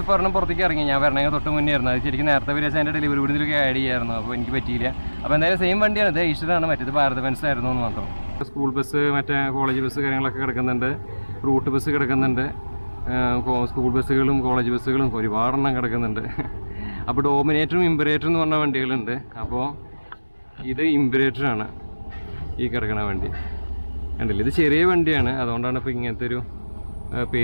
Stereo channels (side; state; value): both; inverted; correlation -1.00